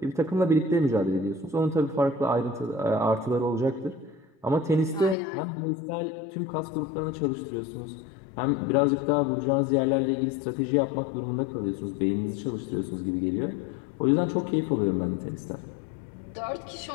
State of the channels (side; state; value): right; drops out; at 5.2 s